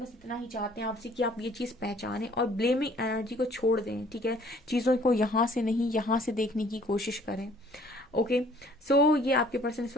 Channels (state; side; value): normal; both; correlation 0.58